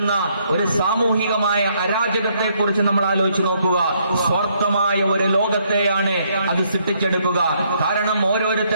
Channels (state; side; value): inverted; both; correlation -0.70